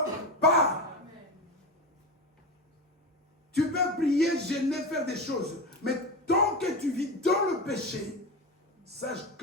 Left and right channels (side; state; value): both; normal; correlation 0.22